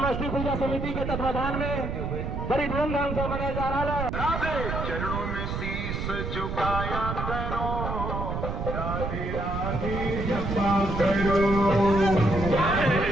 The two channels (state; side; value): noise; right; rumble, 3 dB below the sound